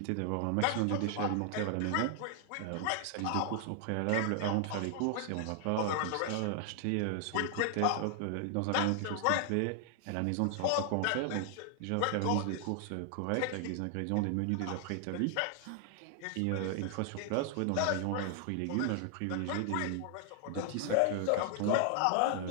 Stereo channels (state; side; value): different; both; correlation 0.00